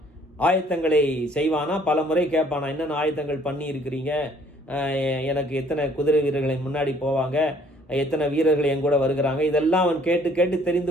ஆயத்தங்களை செய்வானா. பல முறை கேட்பானா, என்னென்ன ஆயத்தங்கள் பண்ணி இருக்கிறீங்க, எனக்கு எத்தனை குதிரை வீரர்களை முன்னாடி போவாங்க, எத்தனை வீரர்கள் என் கூட வருகிறாங்க, இதெல்லாம் அவன் கேட்டு கேட்டு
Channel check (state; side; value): normal; both; correlation 0.60